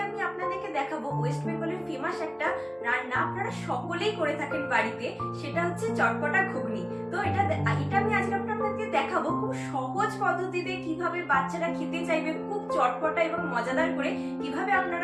আমি আপনাদেরকে দেখাবো ওয়েস্ট বেঙ্গলের ফেমাস একটা রান্না, আপনারা সকলেই করে থাকেন বাড়িতে, সেটা হচ্ছে চটপটা ঘুগনি। তো এটা আমি আজকে আপনাদেরকে দেখাবো খুব সহজ পদ্ধতিতে কিভাবে বাচ্চারা খেতে চাইবে, খুব চটপটা এবং মজাদার করে কিভাবে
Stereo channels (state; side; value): identical; both; correlation 1.00